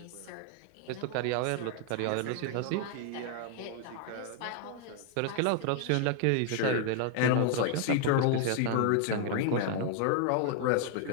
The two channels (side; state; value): both; different; correlation 0.00